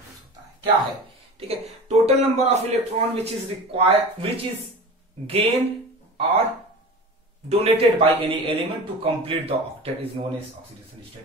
होता है। क्या है, ठीक है, total number of electron which is gain और donated by any element to complete the octet is known as oxidation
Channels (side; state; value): both; normal; correlation 0.34